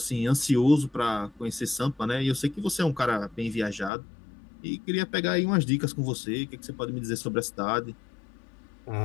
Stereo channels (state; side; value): drops out; right; at 3.9 s